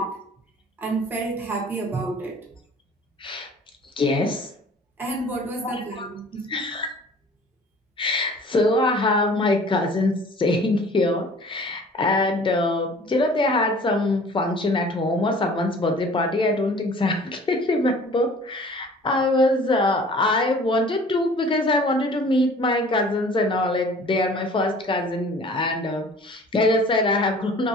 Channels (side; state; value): both; normal; correlation 0.48